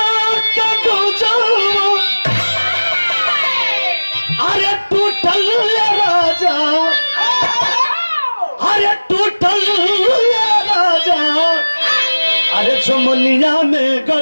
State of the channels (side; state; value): both; inverted; correlation -1.00